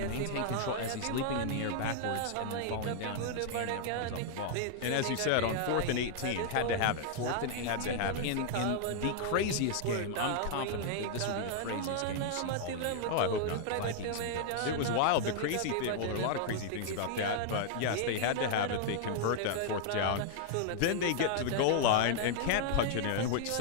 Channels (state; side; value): different; both; correlation -0.01